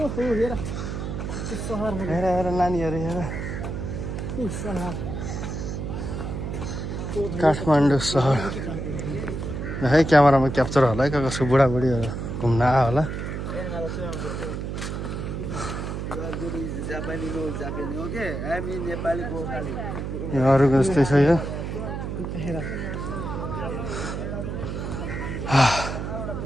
हेर त्यो सहरहरू, हेर हेर नानीहरू हेर। ऊ सहर काठमाडौँ सहर है। क्यामेरामा क्याप्चर होला है, कसको बुढाबुढीहरू घुम्न आयो होला। यो अरूको जस्तै छ यो। हेर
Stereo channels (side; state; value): right; noise; hum, 4 dB below the sound